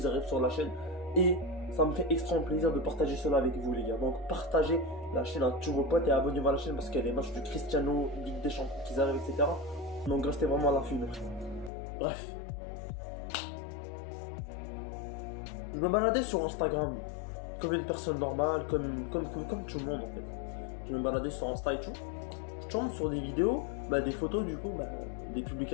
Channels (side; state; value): right; drops out; at 11.7 s